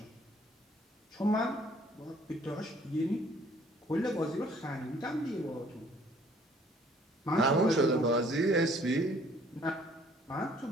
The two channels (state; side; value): normal; both; correlation 0.59